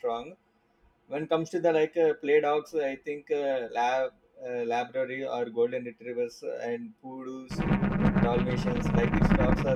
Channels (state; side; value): identical; both; correlation 1.00